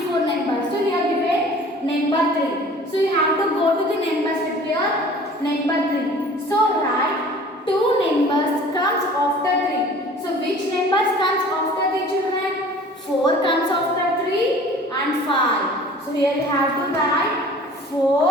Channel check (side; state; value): both; normal; correlation 0.47